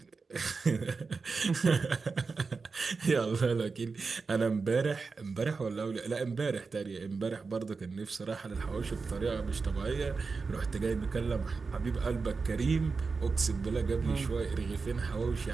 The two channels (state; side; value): quieter; left; 4.5 dB